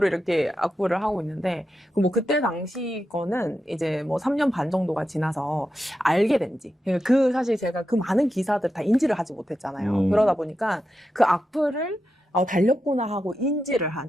이렇게 악플을 하고 있는데 그때 당시 거는 이제 3년 반 정도가 지나서 알게 된지 사실 제가 그 많은 기사들 다 인지를 하지 못했잖아요. 그러다 보니까 그 악플을 달렸구나 하고 인지를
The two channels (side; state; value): both; normal; correlation 0.88